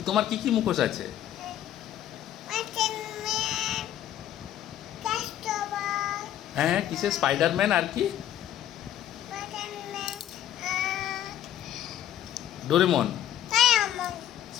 তোমার কি কি মুখোশ আছে? হ্যাঁ, কিসের? স্পাইডারম্যান আর কি? ডোরেমন।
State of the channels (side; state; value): right; quieter; 11.6 dB